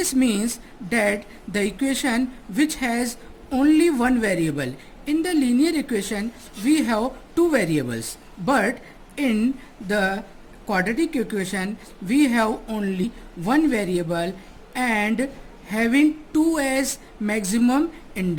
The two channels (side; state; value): both; identical; correlation 1.00